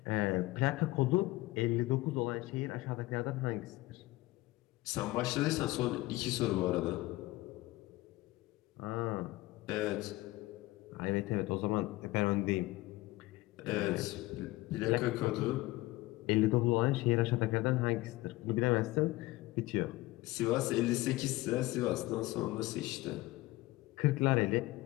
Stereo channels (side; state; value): right; quieter; 19.3 dB